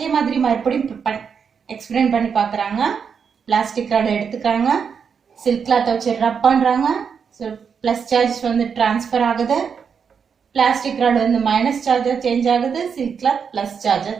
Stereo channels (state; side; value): quieter; left; 6.6 dB